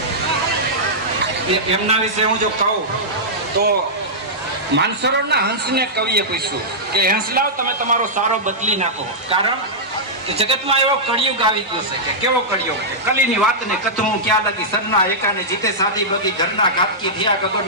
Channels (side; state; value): both; normal; correlation -0.11